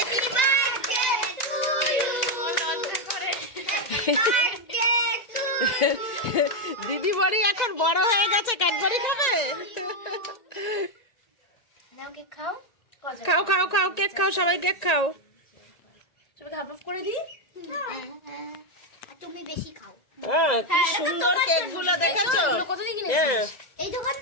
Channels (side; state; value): right; late; 2.0 ms